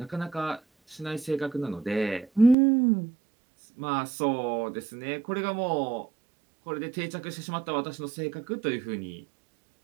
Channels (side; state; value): left; drops out; at 2.6 s